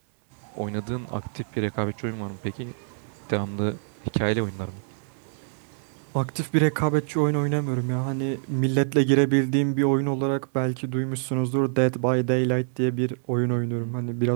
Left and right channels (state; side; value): silent; left; 61 dB below the other